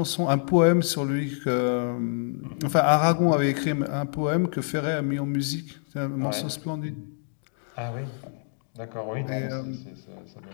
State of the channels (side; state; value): right; silent; 60 dB below the other